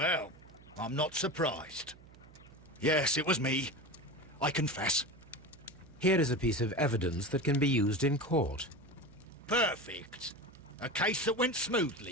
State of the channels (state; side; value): noise; right; hum, 22 dB below the sound